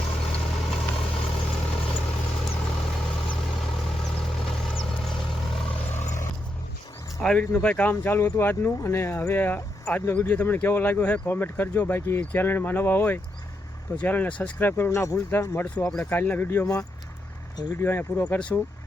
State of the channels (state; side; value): normal; both; correlation 0.82